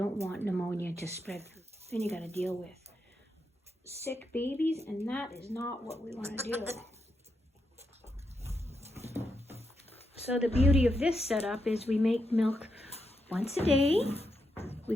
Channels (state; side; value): normal; both; correlation 0.83